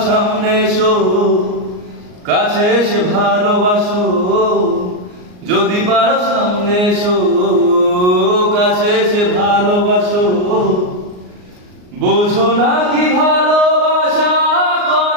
সামনে এসো, কাছে এসে ভালোবাসো। যদি পারো সামনে এসো, কাছে এসে ভালোবাসো। বোঝো না কি ভালোবাসা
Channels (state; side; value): late; left; 39 ms